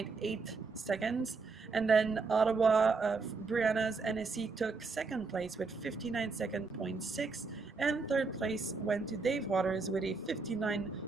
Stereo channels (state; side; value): quieter; left; 4.3 dB